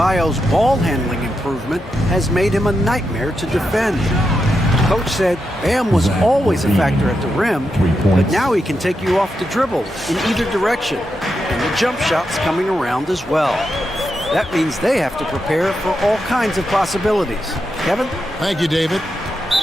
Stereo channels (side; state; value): both; normal; correlation 0.86